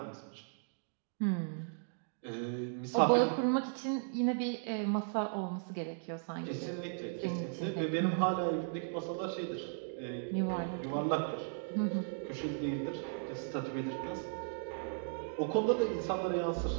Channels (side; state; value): left; silent; digital silence